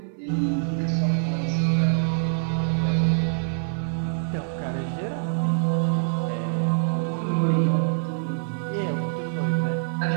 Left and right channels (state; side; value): silent; left; digital silence